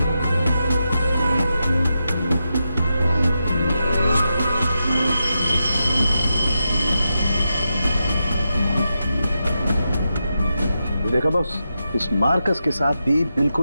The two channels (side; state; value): both; inverted; correlation -0.88